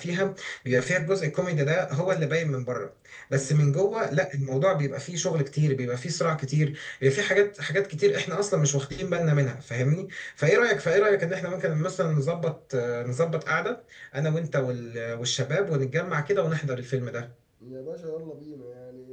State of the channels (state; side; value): identical; both; correlation 1.00